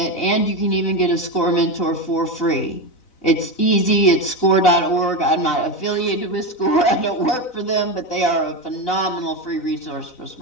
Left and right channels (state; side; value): late; right; 3.9 ms